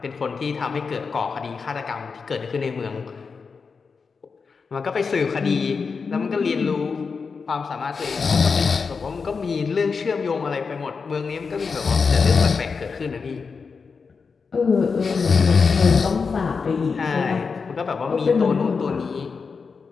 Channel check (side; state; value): right; quieter; 5.1 dB